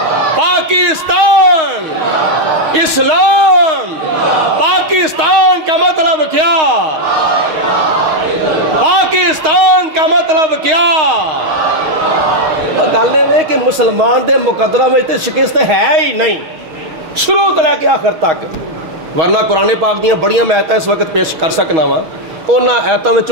پاکستان اسلام پاکستان کا مطلب کیا پاکستان کا مطلب کیا گل یہ کہ مسلمان دے مقدرہ میں شکست ہے ہی نہیں شروع تو لے کے آخر تک ورنہ قرآن پاک دیاں بڑیاں میں آیتاں اس وقت پیش کر سکنا وا انہاں آیتاں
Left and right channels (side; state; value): left; late; 6.3 ms